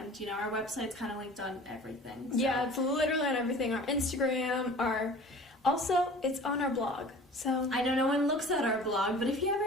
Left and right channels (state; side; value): normal; both; correlation 0.43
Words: our website's kind of linked on everything. So. Yeah, it's literally on everything. Our Instagram, also it's on our blog. So I know no one looks at our blog, but if you